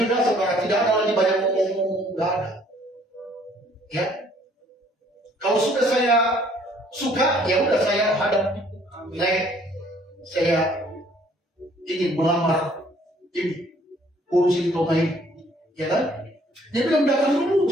saudara. Tidak ada lagi banyak ngomong-ngomong, tidak ada. Ya, kalau sudah saya suka, ya udah saya hadap. Saya ingin melamar ini, urusin Toma ini, ya kan? Dia bilang datang dulu,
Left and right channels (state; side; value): normal; both; correlation 0.61